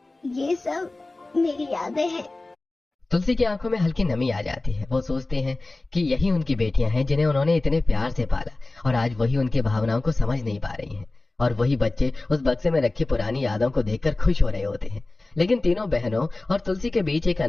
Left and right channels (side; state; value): right; quieter; 3.0 dB